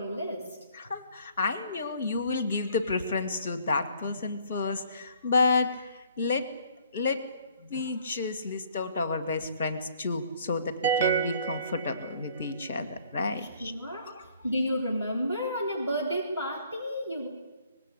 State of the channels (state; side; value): inverted; both; correlation -0.61